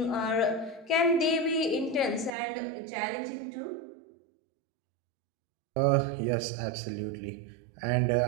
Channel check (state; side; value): drops out; left; at 2.3 s